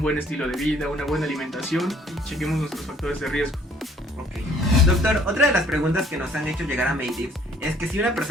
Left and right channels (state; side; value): normal; both; correlation 0.59